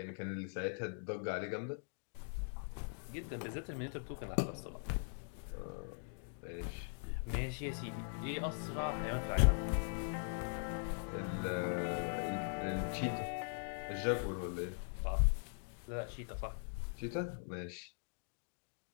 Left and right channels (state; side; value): silent; right; digital silence